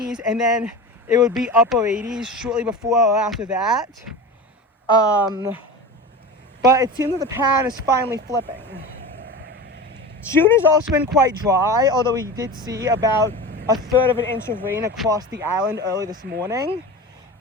and then it would be upper 80s shortly before or after that. But it seems that the pattern is finally flipping. June has also been quite dry, although we did see about 1/3 of an inch of rain across the island early this morning.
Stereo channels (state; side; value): normal; both; correlation 0.30